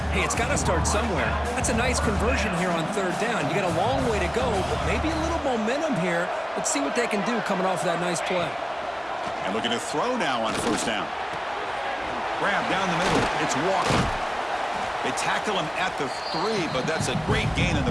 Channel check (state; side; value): identical; both; correlation 1.00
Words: Hey, it's got to start somewhere. That's a nice conversion here on third down. You got a long way to go, but maybe a little momentum here. Let's see what they can do coming off that nice play. And looking to throw now on first down. Grab down the middle. It's Walker. They tackle him at the 3, but that's a great gain in